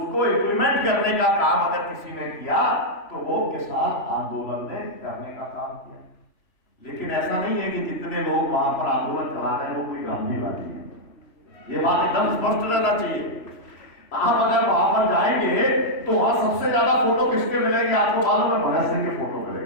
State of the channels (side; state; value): right; late; 3.0 ms